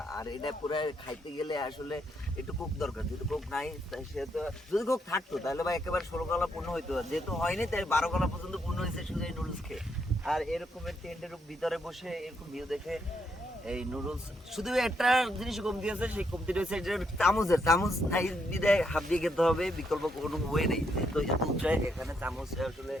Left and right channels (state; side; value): normal; both; correlation 0.76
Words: আর এটা পুরো খাইতে গেলে আসলে একটু কোক দরকার, যেহেতু কোক নাই সেহেতু, যদি কোক থাকতো তাহলে ভাই একেবারে 16 গলা পূর্ণ হইতো, যেহেতু হয়নি তাই 12 গলা পর্যন্ত পূর্ণ হয়েছে শুধু এই নুডলস খেয়ে। আর এরকমের টেন্টের ভিতরে বসে এরকম ভিউ দেখে এই নুডলস, শুধু একটা জিনিস কমতি আছে, সেই কমতিটা হচ্ছে চামচ নাই বিদায় হাত দিয়ে খেতে হবে, বিকল্প কোনো ওয়ে নেই। তো এত উঁচায় এখানে চামচ আসলে